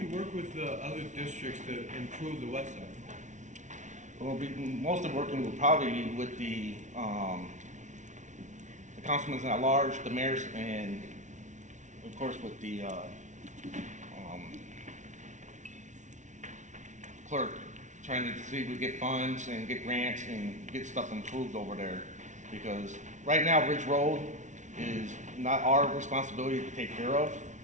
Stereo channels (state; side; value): late; left; 0.36 ms